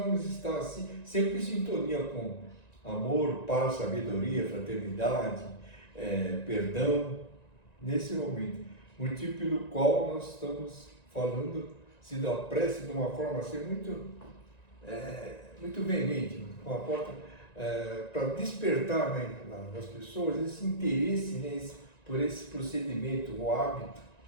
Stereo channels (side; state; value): right; late; 1.9 ms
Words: estar assim, sempre em sintonia com amor, paz, sabedoria, fraternidade, perdão, nesse momento, motivo pelo qual nós estamos falando da prece de uma forma assim muito veemente, com a porta para despertar nas pessoas esse interesse por esse procedimento, o hábito